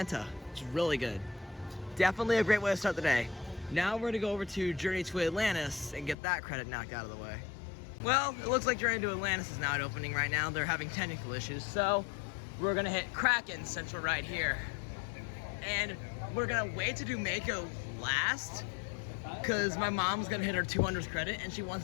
It's really good. Definitely a great way to start the day. Now we're gonna go over to Journey to Atlantis and get that credit knocked out of the way. Well, it looks like Journey to Atlantis is not opening right now. They're having technical issues, so we're gonna hit Kraken since we're right here. And we're gonna wait to do Mako last, because my mom's gonna hit her 200th credit and she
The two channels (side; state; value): right; drops out; at 6.2 s